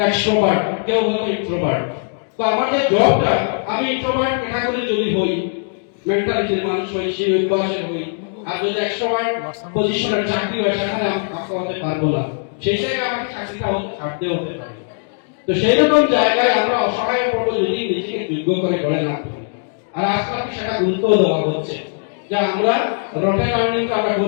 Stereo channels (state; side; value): silent; right; digital silence